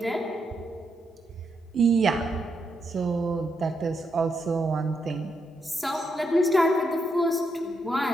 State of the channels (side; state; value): both; normal; correlation 0.80